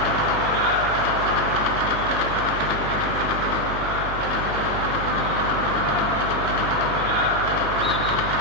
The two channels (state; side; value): noise; right; hum, 7 dB below the sound